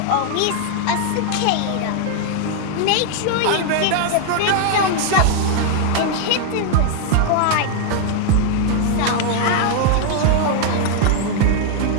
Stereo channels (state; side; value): different; both; correlation 0.00